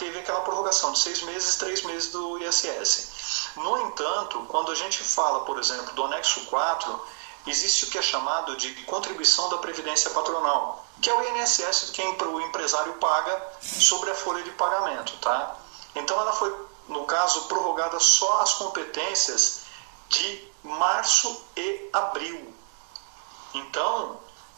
aquela prorrogação de 6 meses e 3 meses do ISS. No entanto, quando a gente fala, por exemplo, do anexo 4, existe o que é chamado de contribuição da Previdência Patronal, que é o INSS que o empresário paga sobre a folha de pagamento, tá? Então ela foi, no caso, prorrogada só as competências de março e abril. Então,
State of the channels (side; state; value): left; silent; 57 dB below the other